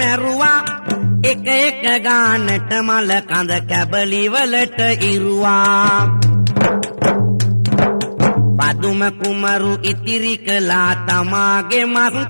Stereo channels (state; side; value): inverted; both; correlation -1.00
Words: එක ගානට මල කඳ කැබලි වලට ඉරුවා. පදුම කුමරු ඉතිරි කළා තමාගේ මස්